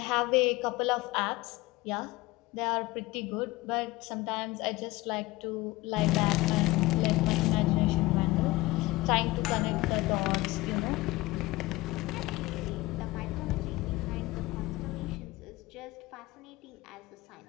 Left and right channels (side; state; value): right; quieter; 20.1 dB